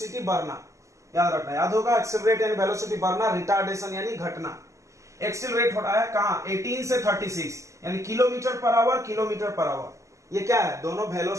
बढ़ना, याद रखना, याद होगा। एक्सेलरेट यानी वेलोसिटी बढ़ना, रिटार्डेशन यानी घटना। एक्सेलरेट हो रहा है कहां 18 से 36, यानी kilometre per hour, kilometre per hour. ये क्या है, दोनों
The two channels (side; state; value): left; late; 0.15 ms